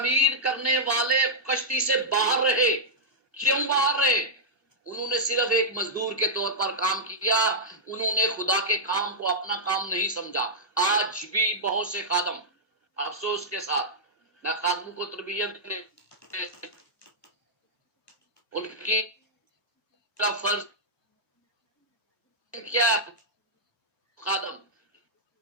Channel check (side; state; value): both; normal; correlation -0.09